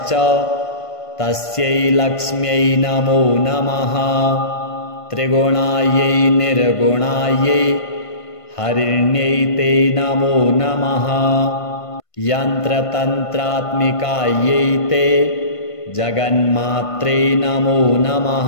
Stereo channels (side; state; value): right; late; 1.5 ms